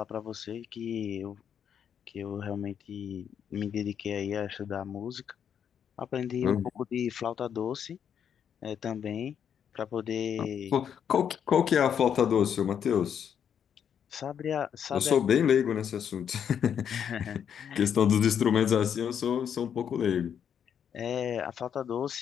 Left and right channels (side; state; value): right; quieter; 8.3 dB